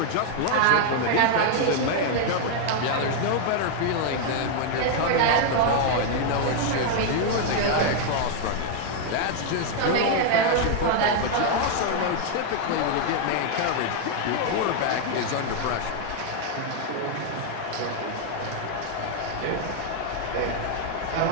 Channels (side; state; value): both; different; correlation 0.00